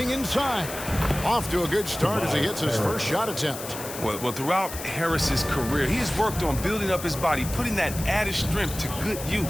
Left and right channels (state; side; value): noise; left; hiss, 10 dB below the sound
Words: inside. Off to a good start as he hits his first shot attempt. Well, throughout Harris's career, he has worked on building up his body, putting that added strength to good